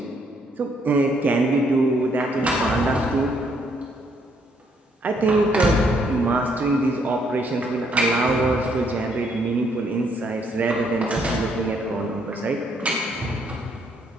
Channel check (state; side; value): normal; both; correlation 0.70